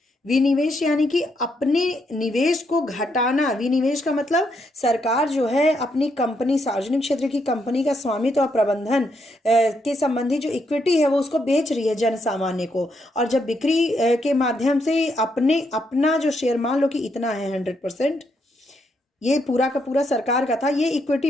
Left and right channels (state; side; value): normal; both; correlation 0.77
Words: विनिवेश यानी कि अपने निवेश को घटाना। विनिवेश का मतलब सरकार जो है अपनी कंपनी, सार्वजनिक क्षेत्र की कंपनी का स्वामित्व और प्रबंधन के संबंधी जो इक्विटी है वो उसको बेच रही है जन सामान्य को, और जब बिक्री के माध्यम से अपना जो शेयर, मान लो कि इतना है 100%, ये पूरा का पूरा सरकार का था, ये इक्विटी